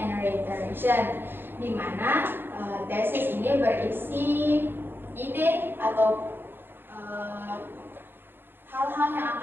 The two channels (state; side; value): late; left; 0.10 ms